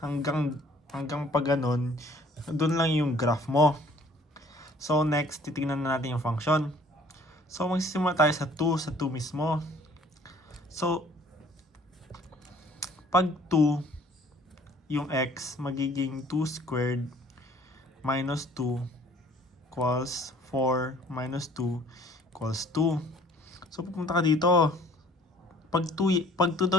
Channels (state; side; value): normal; both; correlation 0.55